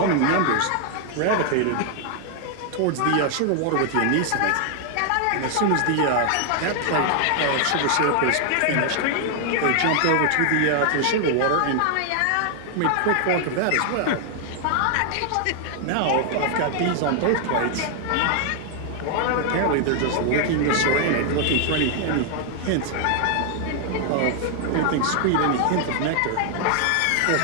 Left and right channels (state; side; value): different; both; correlation 0.00